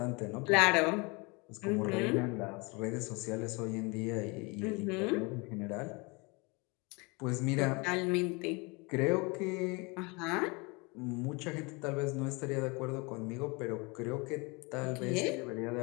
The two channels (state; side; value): quieter; right; 28.3 dB